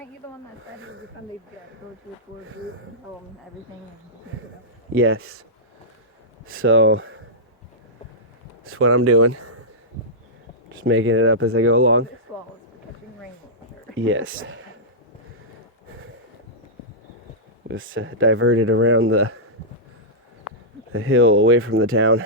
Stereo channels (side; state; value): both; normal; correlation -0.13